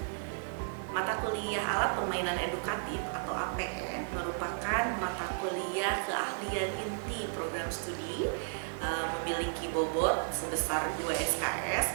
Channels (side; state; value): left; silent; 55 dB below the other